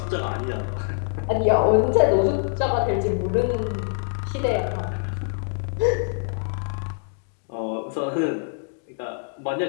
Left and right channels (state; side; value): silent; right; digital silence